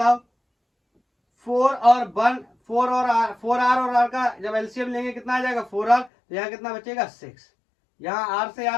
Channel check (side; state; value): right; drops out; at 6.1 s